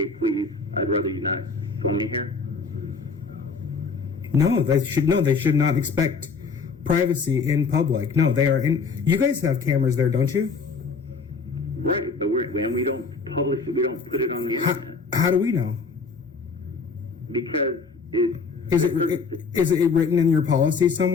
please, I'd rather you not film me here. No, they should not expect privacy in public. No, they are in. You guys have cameras there, don't you? Right, but we don't publish it. We don't put it on the internet. How do we know? Because is it written in your policy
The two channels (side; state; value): right; quieter; 4.8 dB